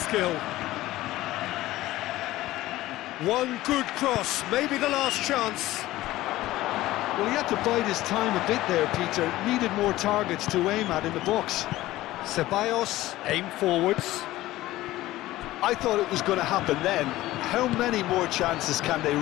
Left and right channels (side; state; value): right; quieter; 16.5 dB